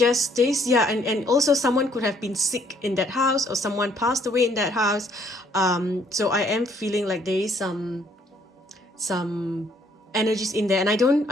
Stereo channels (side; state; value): both; normal; correlation 0.65